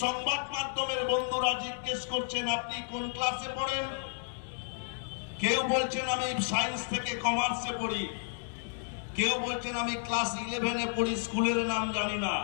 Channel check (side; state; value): right; silent; digital silence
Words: সংবাদ মাধ্যমের বন্ধুরা জিজ্ঞেস করছেন আপনি কোন ক্লাসে পড়েন। কেউ বলছেন আমি সায়েন্স থেকে কমার্সে পড়ি, কেউ বলছেন আমি ক্লাস 11-এ পড়ি, স্কুলের নাম জানি না।